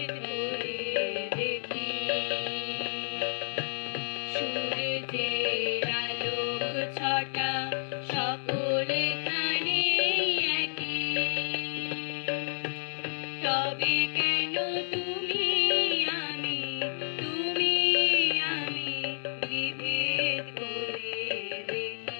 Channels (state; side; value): silent; right; digital silence